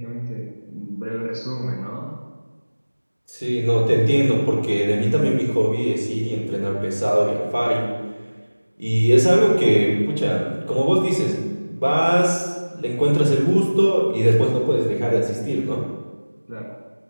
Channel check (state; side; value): inverted; both; correlation -1.00